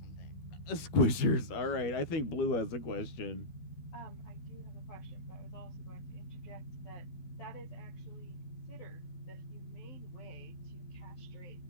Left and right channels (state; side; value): late; right; 12 ms